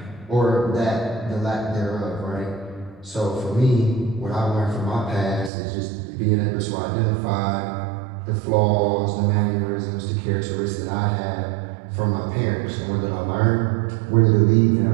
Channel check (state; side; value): drops out; left; at 5.5 s